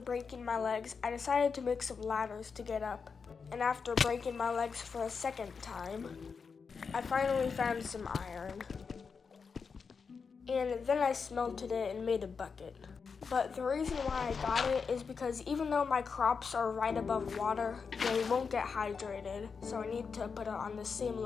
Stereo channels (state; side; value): quieter; right; 5.5 dB